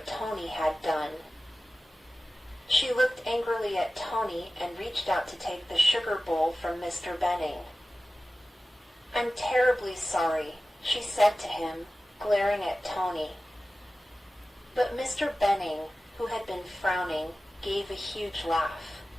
Tony had done. She looked angrily at Tony and reached out to take the sugar bowl from Mr. Benning. "I'm terribly sorry," she said to him, glaring at Tony. But Mr. Benning, who had been frowning, gave a huge laugh.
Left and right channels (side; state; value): both; normal; correlation 0.95